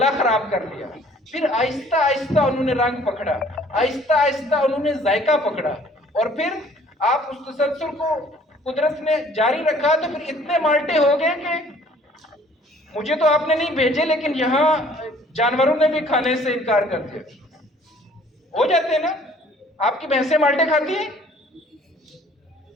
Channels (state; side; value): normal; both; correlation 0.56